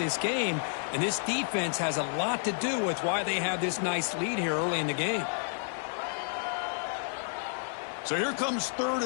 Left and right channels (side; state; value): right; silent; 57 dB below the other